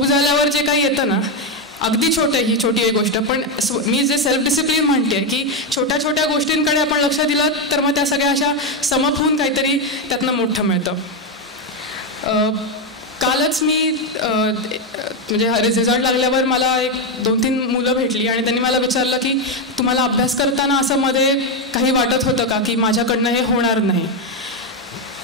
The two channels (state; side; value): normal; both; correlation 0.07